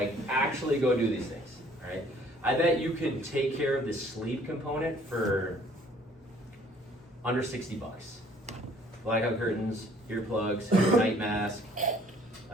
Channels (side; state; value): both; normal; correlation 0.58